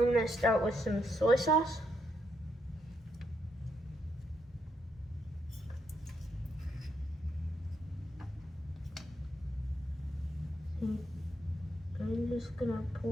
gonna start with some soy sauce. I'm just gonna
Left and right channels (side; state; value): both; normal; correlation 0.78